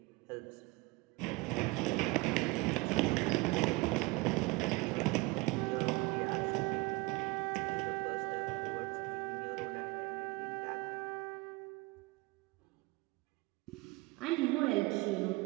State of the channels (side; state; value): left; quieter; 23.4 dB